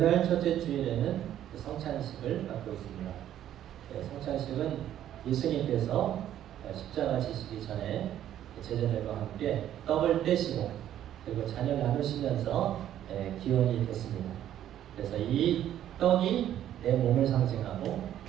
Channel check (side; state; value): left; quieter; 11.3 dB